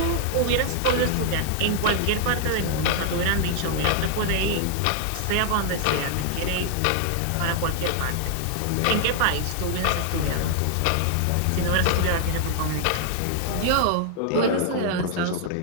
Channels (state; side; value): different; both; correlation 0.00